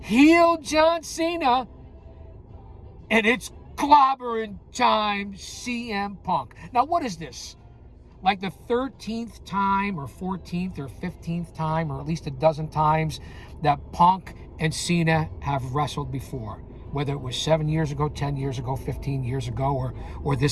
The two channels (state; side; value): identical; both; correlation 1.00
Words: heel John Cena, and it's clobbering time, CM Punk. Now, what is this? Like the 13th time or 14th or 15th time, or at least a dozen times that Punk and Cena have wrestled before, whether it was 7 years ago, 10 years ago, 15 years ago, or